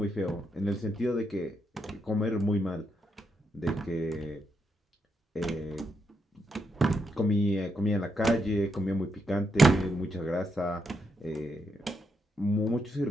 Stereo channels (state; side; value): normal; both; correlation 0.81